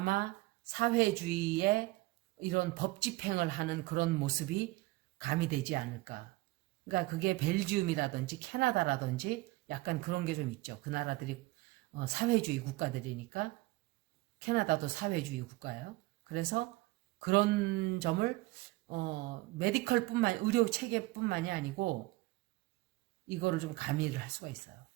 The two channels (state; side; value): quieter; left; 20.5 dB